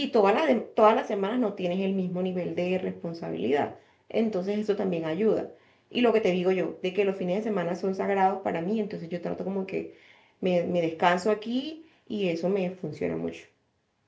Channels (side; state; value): both; identical; correlation 1.00